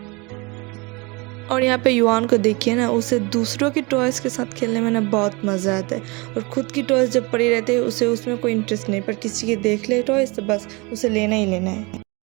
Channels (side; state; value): left; quieter; 27.1 dB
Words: और यहाँ पे युआन को देखिए ना, उसे दूसरों की टॉयज़ के साथ खेलने में ना बहुत मज़ा आता है। और ख़ुद की टॉयज़ जब पड़ी रहती है उसे उसमें कोई इंटरेस्ट नहीं, पर किसी के देख ले टॉयज़ तो बस उसे लेना ही लेना है।